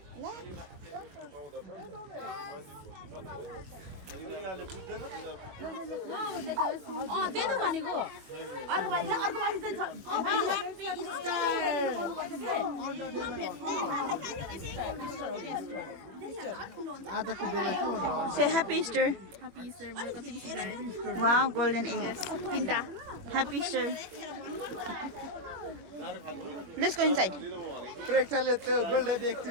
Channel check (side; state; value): left; late; 22 ms